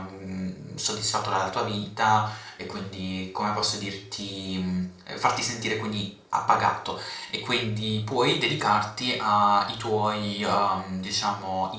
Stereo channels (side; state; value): both; identical; correlation 1.00